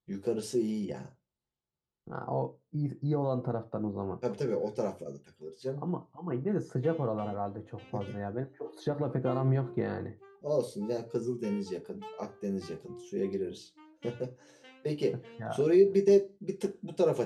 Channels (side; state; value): both; identical; correlation 1.00